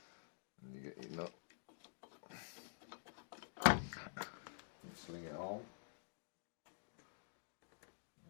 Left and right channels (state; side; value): silent; right; digital silence